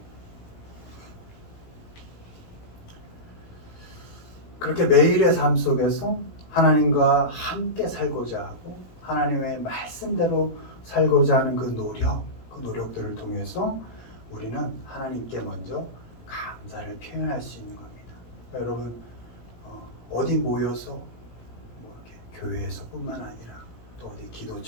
그렇게 매일의 삶 속에서 하나님과 함께 살고자 하고 하나님의 말씀대로 살고자 하는 그 노력들을 통해서 우리는 하나님께 먼저 감사를 표현할 수 있는 겁니다. 여러분 어디 모여서 이렇게 교회에서뿐만 아니라 또 어디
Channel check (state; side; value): late; right; 17 ms